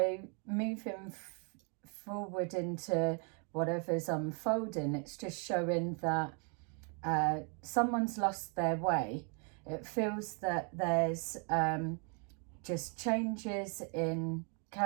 moving forward into whatever's unfolding, it's just showing that someone's lost their way. It feels that there's just changes in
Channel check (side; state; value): left; quieter; 38.0 dB